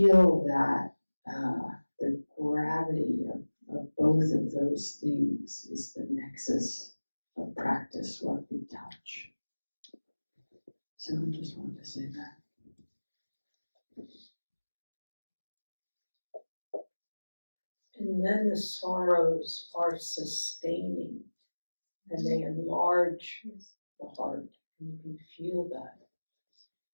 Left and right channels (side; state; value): both; inverted; correlation -1.00